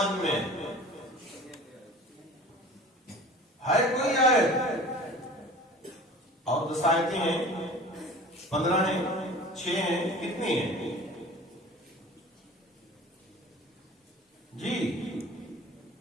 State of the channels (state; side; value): normal; both; correlation 0.41